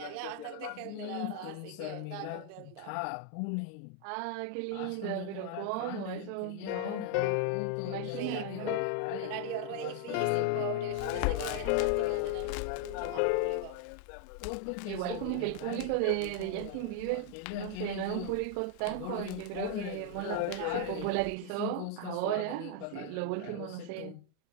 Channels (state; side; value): different; both; correlation 0.00